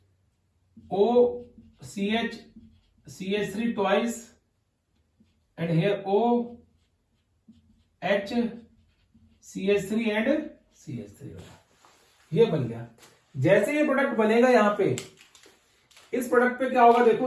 O CH CH3 twice and here O H CH3 and CH3, ये बन गया। जैसे ये प्रोडक्ट बनेगा यहां पे, इस प्रोडक्ट पे क्या होगा,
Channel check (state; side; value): identical; both; correlation 1.00